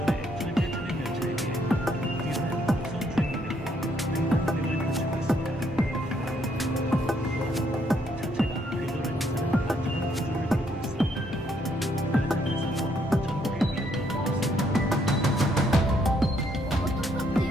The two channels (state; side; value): normal; both; correlation 0.71